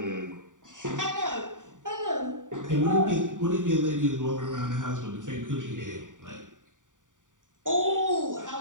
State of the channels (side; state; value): left; late; 0.87 ms